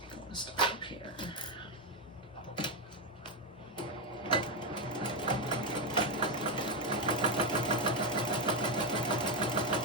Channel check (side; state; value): both; normal; correlation 0.07